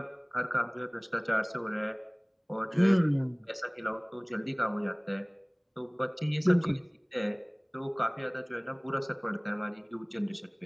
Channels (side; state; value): both; identical; correlation 1.00